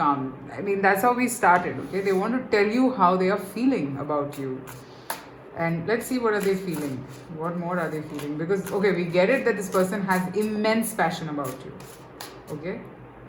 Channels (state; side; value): identical; both; correlation 1.00